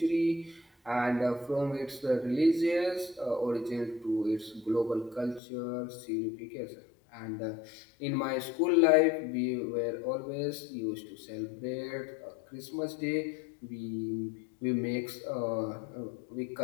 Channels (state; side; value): drops out; right; at 5.4 s